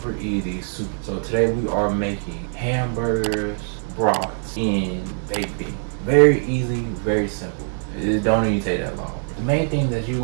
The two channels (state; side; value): silent; left; 61 dB below the other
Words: easy. So today we are making hamburgers, brats, and baked beans. Very easy, very simple. It don't even take that long. The main thing that you're